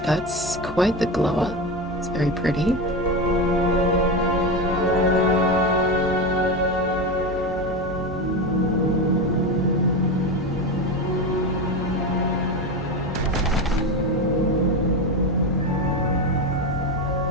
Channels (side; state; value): both; normal; correlation 0.19